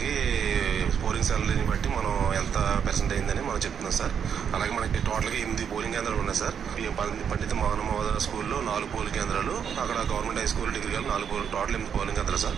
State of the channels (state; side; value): quieter; left; 7.7 dB